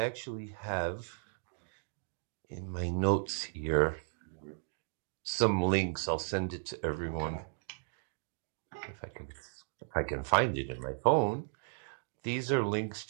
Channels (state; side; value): silent; left; digital silence